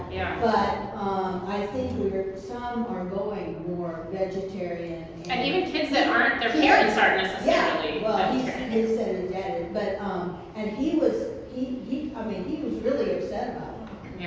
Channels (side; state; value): both; identical; correlation 1.00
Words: Yeah. But, I think some are going more vegetarian. And even kids that aren't, their parents aren't Yeah, necessarily well, vegetarian. he said his dad is, but, and he was really upset about it.